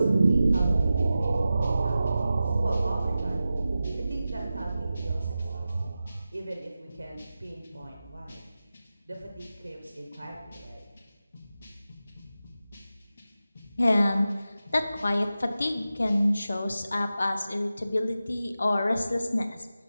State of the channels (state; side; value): inverted; both; correlation -0.93